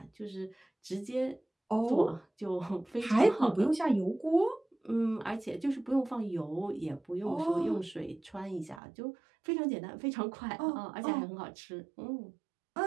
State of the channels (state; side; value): drops out; left; at 8.8 s